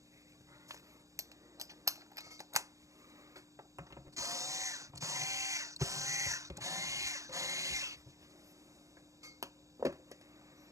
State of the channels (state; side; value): late; left; 0.15 ms